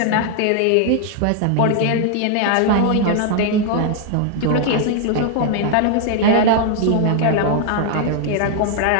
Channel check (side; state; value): both; different; correlation 0.00